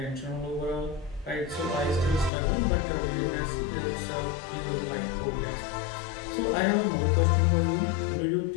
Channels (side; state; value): right; drops out; at 2.3 s